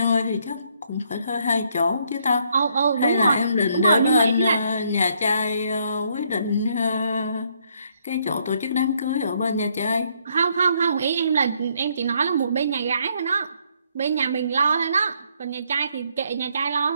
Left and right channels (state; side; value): inverted; both; correlation -0.71